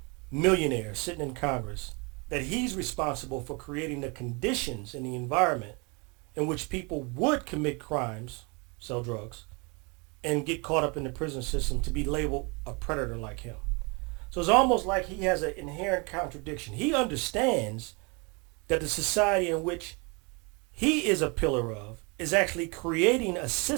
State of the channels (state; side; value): quieter; left; 30.8 dB